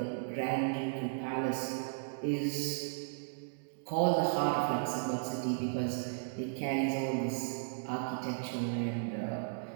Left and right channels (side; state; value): left; silent; digital silence